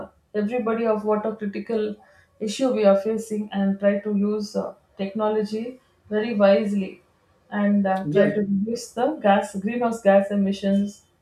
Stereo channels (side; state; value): both; identical; correlation 1.00